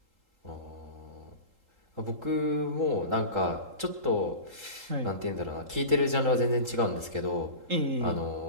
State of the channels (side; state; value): left; late; 3.8 ms